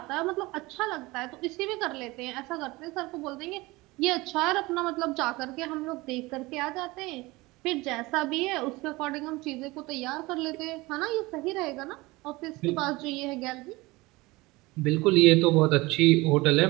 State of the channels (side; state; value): left; quieter; 21.8 dB